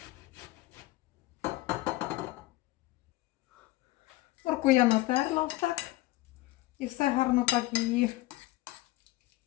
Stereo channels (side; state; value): right; quieter; 18.4 dB